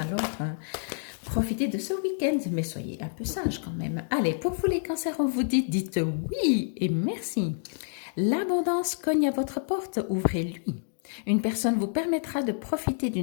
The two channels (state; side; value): silent; right; digital silence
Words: profitez de ce week-end, mais soyez un peu sages quand même. Allez, pour vous les cancers, on vous dit, dites oui et merci. L'abondance cogne à votre porte, ouvrez-lui. Une personne vous permettra de profiter